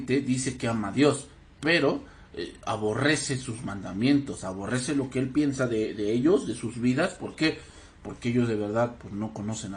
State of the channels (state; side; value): identical; both; correlation 1.00